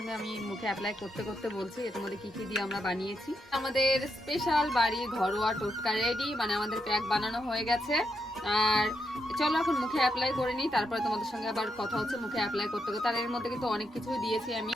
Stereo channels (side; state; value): both; normal; correlation 0.82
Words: আমি মুখে অ্যাপ্লাই করতে করতে বলছি এর মধ্যে কি কি দিয়ে আমরা বানিয়েছি। আমাদের স্পেশাল বাড়ি ঘরোয়া টোটকা রেডি, মানে আমাদের প্যাক বানানো হয়ে গেছে। আর চলো এখন মুখে অ্যাপ্লাই করে নিই, তারপরে তোমাদের সঙ্গে আবার কথা হচ্ছে মুখে অ্যাপ্লাই করতে করতে। আর এর মধ্যে কিন্তু অনেক কিছুই দিয়েছি আমি,